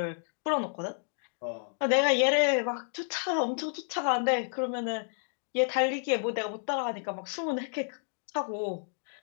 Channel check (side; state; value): right; silent; digital silence